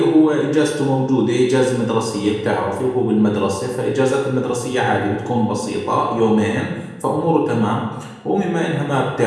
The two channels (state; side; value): identical; both; correlation 1.00